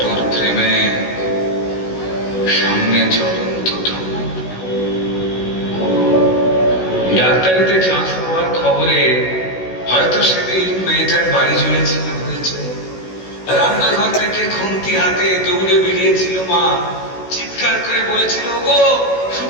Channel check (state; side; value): late; right; 16 ms